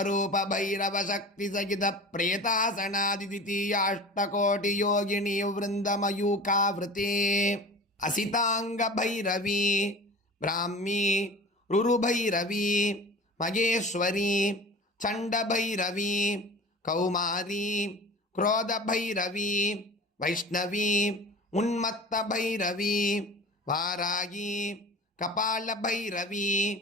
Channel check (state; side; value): normal; both; correlation 0.38